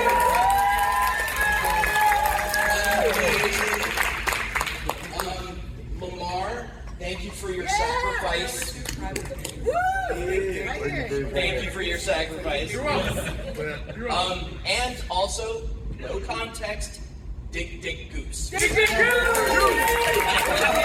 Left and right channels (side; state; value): both; identical; correlation 1.00